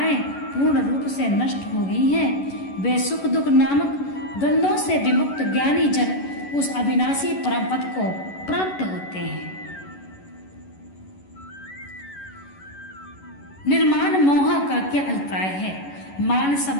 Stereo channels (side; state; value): right; late; 11 ms